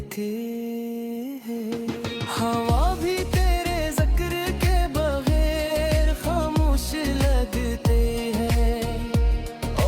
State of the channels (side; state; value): both; identical; correlation 1.00